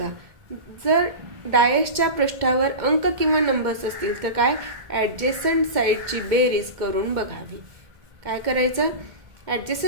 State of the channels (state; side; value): late; left; 2.1 ms